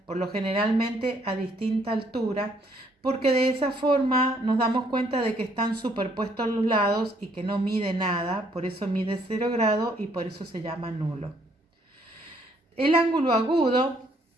por lo generalmente a distinta altura, porque de esa forma nos damos cuenta de que están superpuestos a los lados y que no mide nada, por eso mide 0 grado y por eso se llama nulo. El ángulo agudo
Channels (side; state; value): both; normal; correlation 0.67